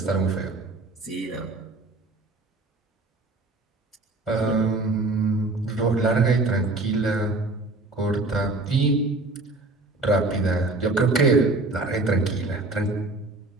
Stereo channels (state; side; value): quieter; left; 3.1 dB